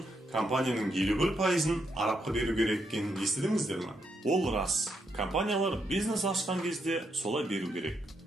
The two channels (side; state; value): both; normal; correlation 0.79